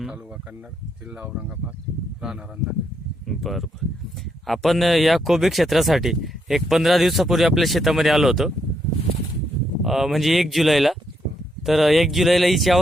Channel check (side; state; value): both; normal; correlation 0.77